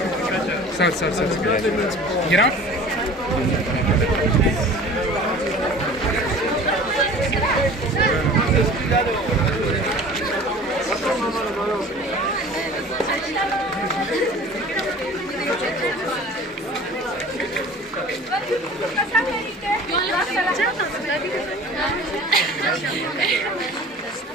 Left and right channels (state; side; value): normal; both; correlation 0.43